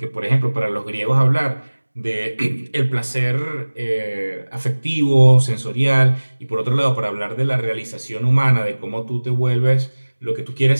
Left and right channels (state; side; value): inverted; both; correlation -1.00